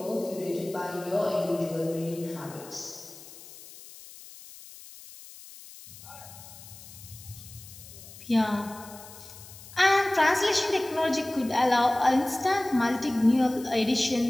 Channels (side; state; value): left; noise; hiss, 18 dB below the sound